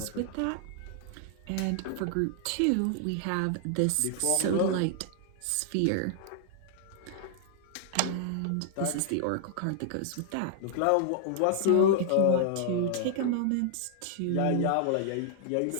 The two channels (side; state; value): both; different; correlation -0.01